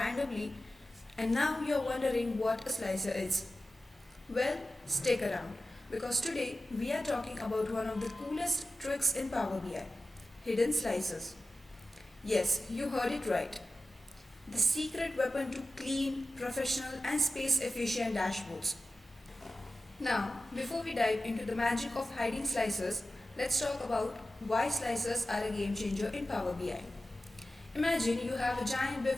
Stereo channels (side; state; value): both; normal; correlation 0.94